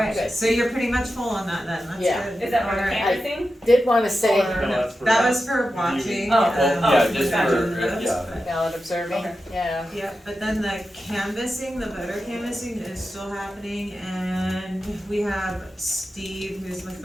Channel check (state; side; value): normal; both; correlation 0.91